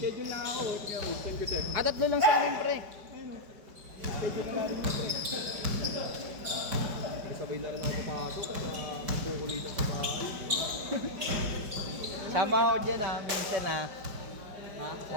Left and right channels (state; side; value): late; left; 5.1 ms